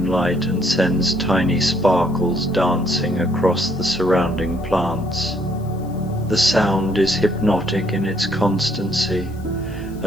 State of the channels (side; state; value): left; noise; hiss, 28 dB below the sound